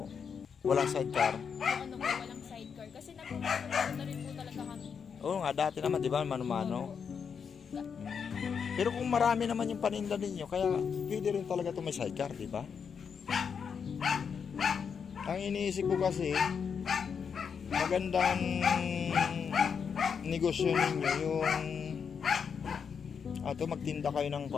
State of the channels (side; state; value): right; quieter; 6.6 dB